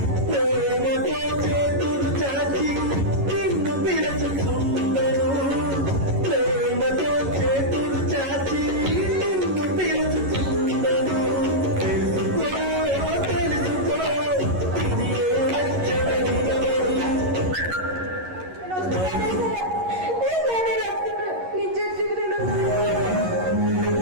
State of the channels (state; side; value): late; left; 11 ms